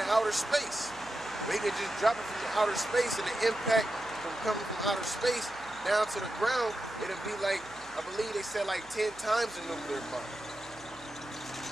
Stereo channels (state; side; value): noise; right; hum, 24 dB below the sound